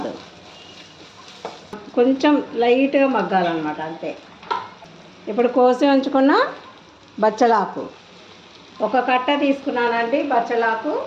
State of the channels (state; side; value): identical; both; correlation 1.00